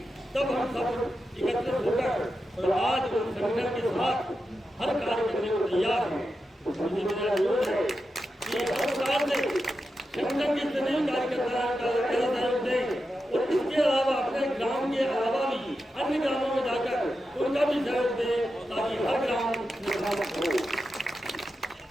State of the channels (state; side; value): normal; both; correlation 0.89